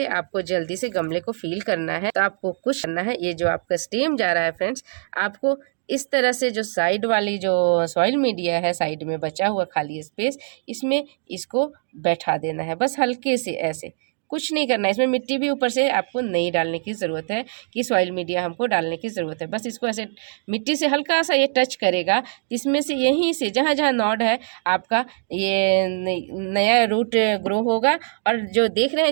आपको जल्दी से गमले को फील करना है, तो आपको कुछ करना है, ये जो आपका स्टेम जा रहा है फ्रेंड्स, आपको इस तरह से जो साइड वाली जो सॉइल मीडिया है, साइड में बचा हुआ खाली स्पेस, इसमें इसको बैठा देना है, बस हल्के से ऐसे, कुछ नहीं करना है। इसमें मिट्टी भी ऊपर से आपको नहीं डालने की ज़रूरत है कि सॉइल मीडिया हमको डालने की ज़रूरत है, बस इसको ऐसे मिट्टी से हल्का सा ये टच करेगा, इसमें से यहीं से जहाँ जहाँ नॉड है आपका ये नया रूट ग्रो होगा। और जो देख रहे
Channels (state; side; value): silent; left; digital silence